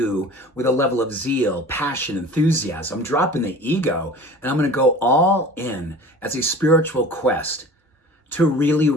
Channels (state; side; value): normal; both; correlation 0.41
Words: with a level of zeal, passion, enthusiasm. I'm dropping the ego, and I'm going to go all in as a spiritual quest to really